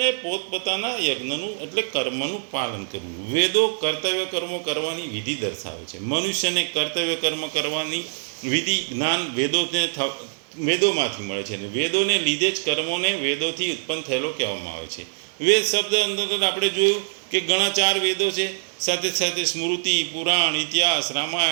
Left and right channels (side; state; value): left; silent; 63 dB below the other